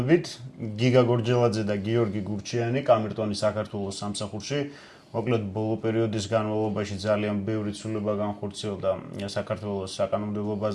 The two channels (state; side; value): identical; both; correlation 1.00